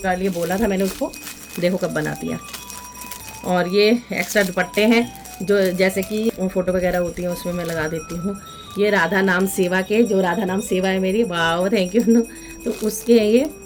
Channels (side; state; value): both; identical; correlation 1.00